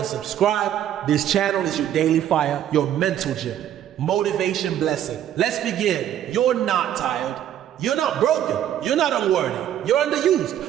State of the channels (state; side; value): quieter; left; 10.9 dB